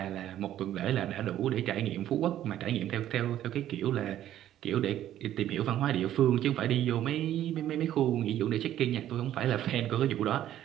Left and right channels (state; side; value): quieter; left; 12.0 dB